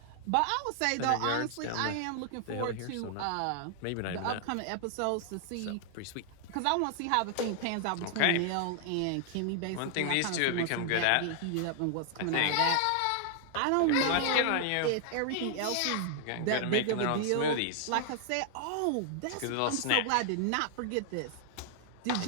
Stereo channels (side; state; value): both; different; correlation 0.00